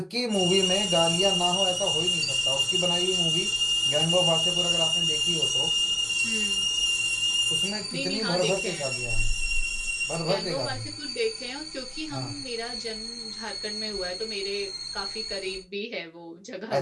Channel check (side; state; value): both; identical; correlation 1.00